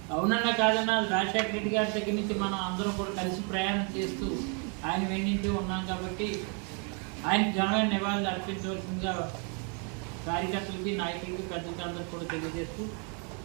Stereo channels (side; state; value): left; quieter; 37.3 dB